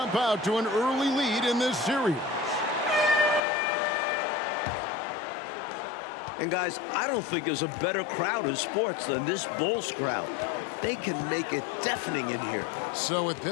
out to an early lead in this series. And guys, I don't think there's a better crowd in sports than this Bulls crowd. They can make it deafening in here. So with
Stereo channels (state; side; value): drops out; right; at 3.4 s